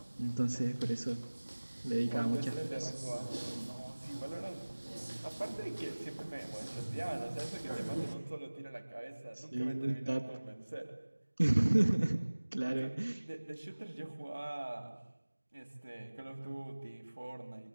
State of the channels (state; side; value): inverted; both; correlation -1.00